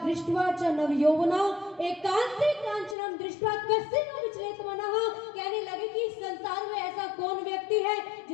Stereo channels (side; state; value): right; drops out; at 3.0 s